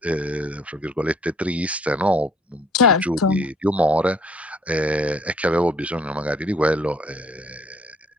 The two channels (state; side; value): normal; both; correlation 0.60